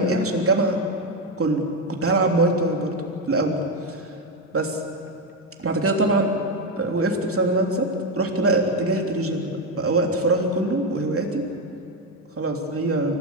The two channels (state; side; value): normal; both; correlation 0.08